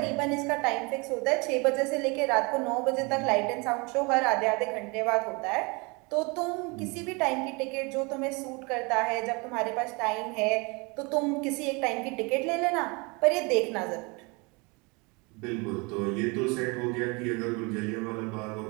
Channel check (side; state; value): left; quieter; 28.7 dB